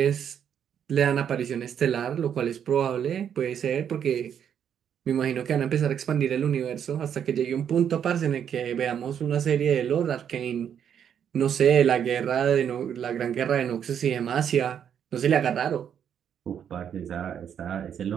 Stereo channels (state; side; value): quieter; left; 8.6 dB